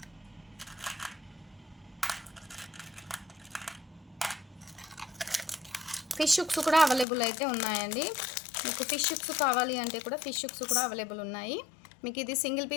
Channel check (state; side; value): drops out; right; at 7.1 s